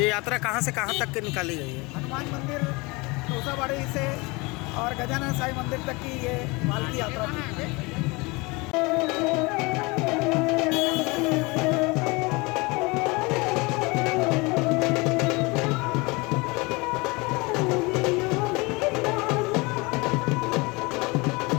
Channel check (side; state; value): right; quieter; 25.9 dB